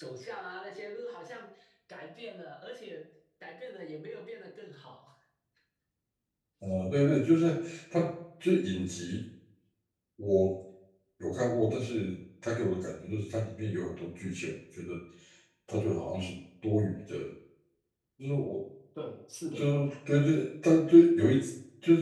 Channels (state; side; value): identical; both; correlation 1.00